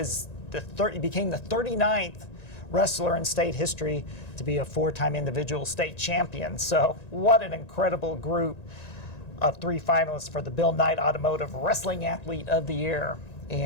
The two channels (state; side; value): late; right; 1.9 ms